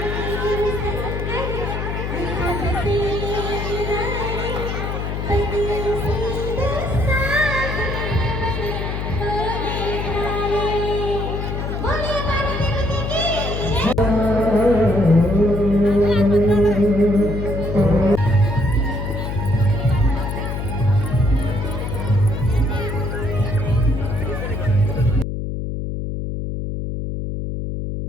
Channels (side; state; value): left; noise; hum, 3 dB below the sound